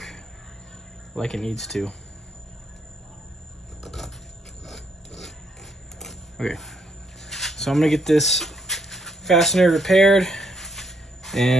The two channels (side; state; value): both; normal; correlation 0.72